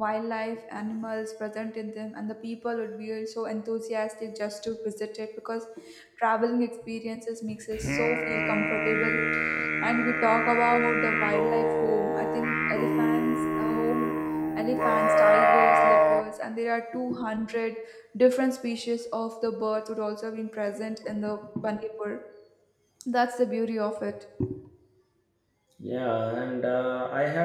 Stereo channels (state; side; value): identical; both; correlation 1.00